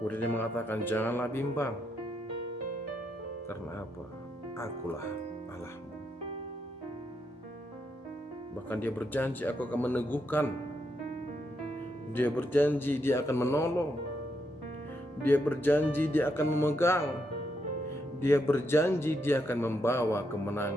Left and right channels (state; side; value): normal; both; correlation 0.80